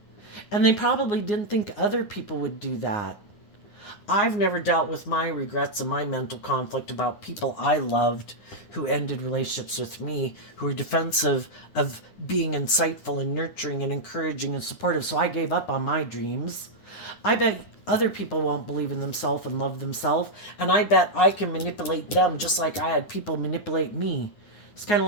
And they probably didn't think other people would do that. I've never dealt with my regrets and my mental conflict about people I loved who ended relationships with me, who were defensive of being insightful and nurturing and encouraging and supportive. So I gave up on my dreams. I bet other people won't believe in themselves and love themselves, and I bet I can manipulate them just like I had people manipulate me. It's kind of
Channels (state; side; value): late; right; 9.7 ms